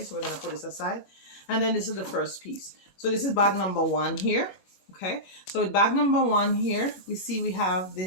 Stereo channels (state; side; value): late; right; 25 ms